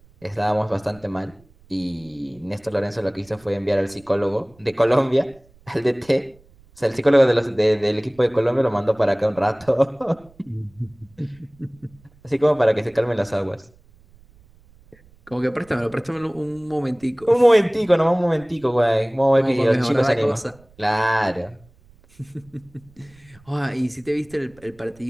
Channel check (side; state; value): right; noise; rumble, 28 dB below the sound